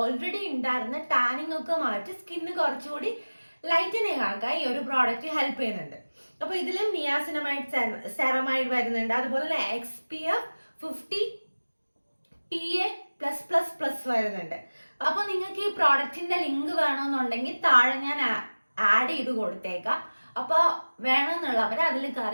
ഉണ്ടായിരുന്ന ടാനിങ് ഒക്കെ മാറ്റി സ്കിന്ന് കുറച്ചുകൂടി ലൈറ്റനിങ് ആക്കാൻ ഈ ഒരു പ്രോഡക്റ്റ് ഹെൽപ്പ് ചെയ്യുന്നുണ്ട്. അപ്പൊ ഇതിലും നിയാസിനമൈഡ്, സെറമൈഡ് വരുന്നുണ്ട്, അതുപോലെ തന്നെ XPF 50 PA+++ വരുന്നുണ്ട്. അപ്പൊ നിങ്ങൾക്ക് ഈ പ്രോഡക്റ്റിന്റെ ലിങ്ക് വേണമെന്നുണ്ടെങ്കിൽ താഴെ ഞാൻ ആഡ് ചെയ്ത് കൊടുത്തേക്കാം. അപ്പൊ വേണമെന്നുള്ളവരെ അതിൽ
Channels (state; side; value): inverted; both; correlation -1.00